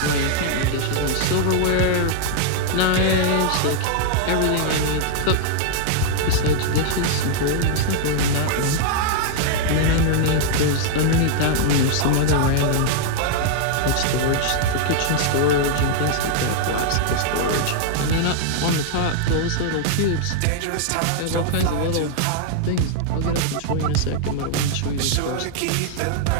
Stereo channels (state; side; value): different; both; correlation -0.01